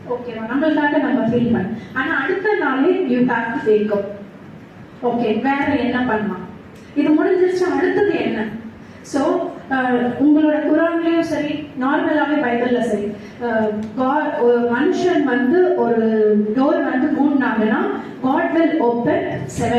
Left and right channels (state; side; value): identical; both; correlation 1.00